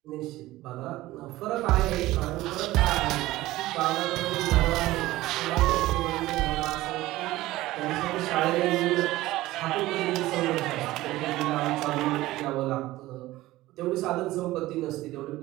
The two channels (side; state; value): left; quieter; 17.2 dB